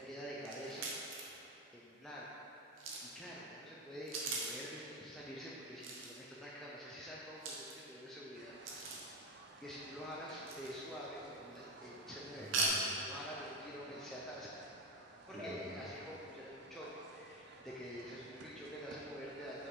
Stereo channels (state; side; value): normal; both; correlation 0.14